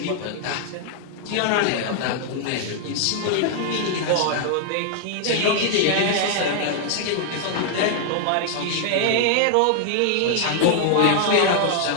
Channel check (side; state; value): both; different; correlation 0.00